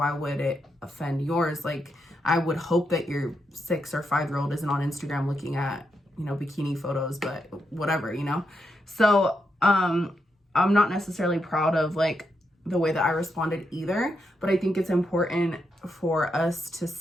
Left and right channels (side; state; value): both; normal; correlation 0.83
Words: would it offend yours? Like, I would hope that your 6 or 5-year-old isn't on Instagram looking at, you know, bikini photos, but whatever, you know? So, I'm not necessarily proud of like the way that I responded either, but I think it's important for us to